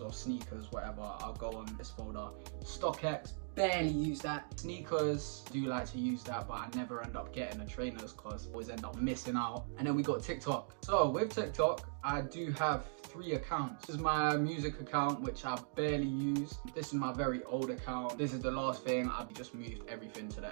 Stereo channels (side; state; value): left; silent; digital silence